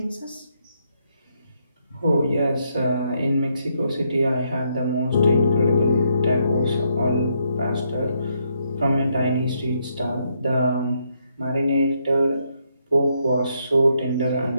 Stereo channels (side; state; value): both; inverted; correlation -0.76